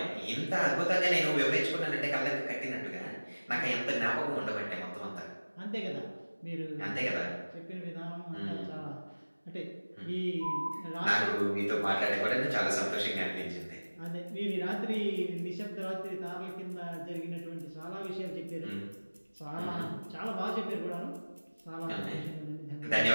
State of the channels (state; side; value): inverted; both; correlation -1.00